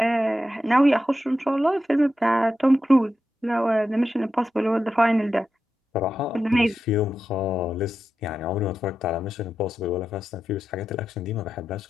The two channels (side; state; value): both; normal; correlation 0.89